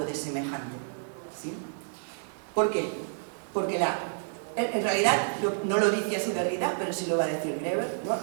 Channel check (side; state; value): left; silent; digital silence